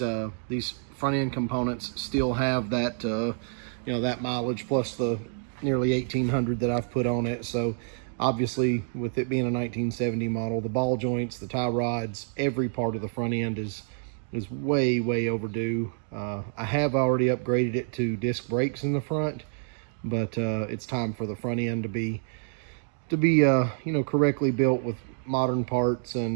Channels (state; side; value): silent; left; digital silence